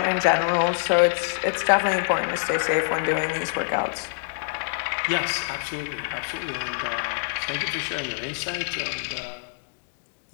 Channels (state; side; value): silent; right; digital silence